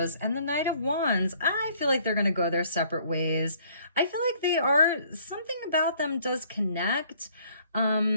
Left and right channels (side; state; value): both; inverted; correlation -0.61